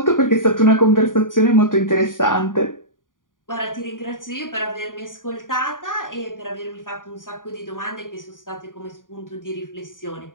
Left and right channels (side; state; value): right; late; 0.89 ms